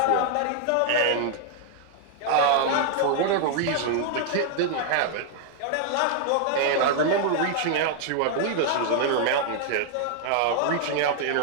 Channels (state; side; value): different; both; correlation 0.00